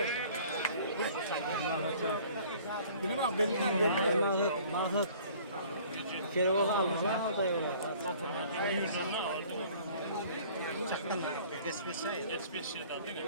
Benim bak benim. Mahmut. Kere o alma da yok. Çaktan.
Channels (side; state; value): both; inverted; correlation -0.52